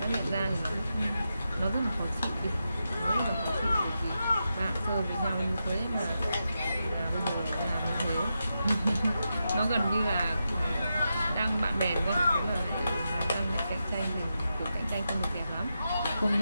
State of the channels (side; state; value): both; inverted; correlation -0.88